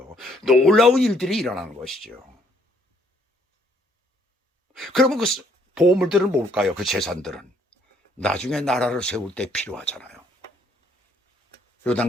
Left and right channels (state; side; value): normal; both; correlation 0.67